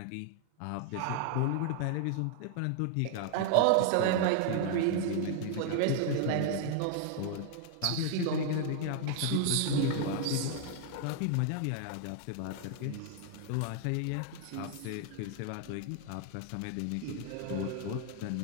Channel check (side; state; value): both; different; correlation 0.00